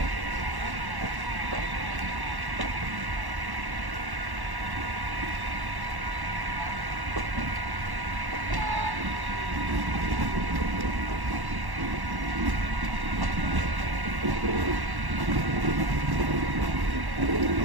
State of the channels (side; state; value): left; late; 1.1 ms